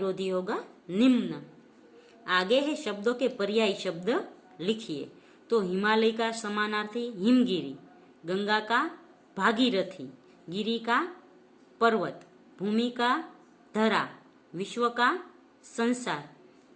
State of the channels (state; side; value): identical; both; correlation 1.00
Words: होगा निम्न। आगे है शब्दों के पर्यायी शब्द लिखिए। तो हिमालय का समानार्थी हिमगिरी, गंगा का भागीरथी, गिरी का पर्वत, भूमि का धरा, विश्व का संसार